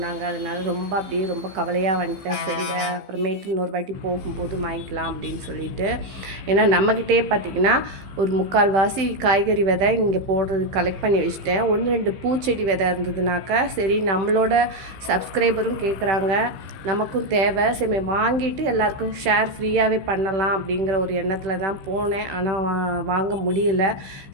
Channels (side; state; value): left; late; 16 ms